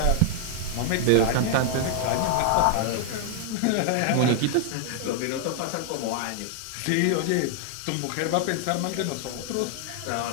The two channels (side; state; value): both; different; correlation 0.00